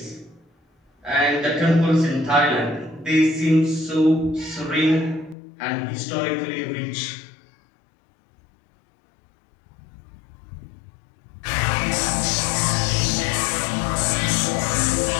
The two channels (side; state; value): right; drops out; at 5.4 s